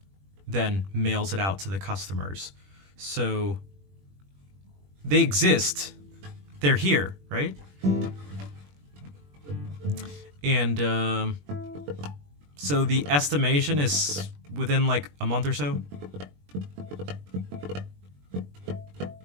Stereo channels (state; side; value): late; left; 21 ms